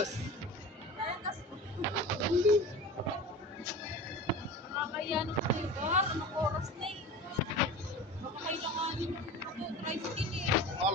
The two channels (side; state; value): both; normal; correlation 0.34